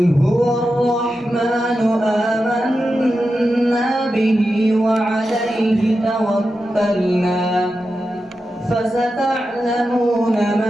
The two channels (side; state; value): both; normal; correlation 0.90